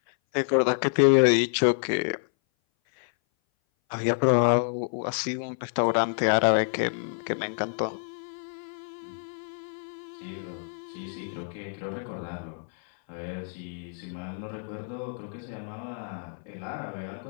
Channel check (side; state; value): right; silent; 58 dB below the other